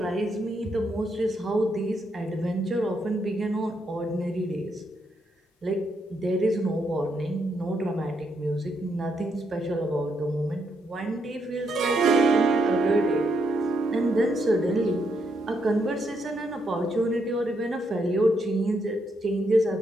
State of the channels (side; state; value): both; normal; correlation 0.78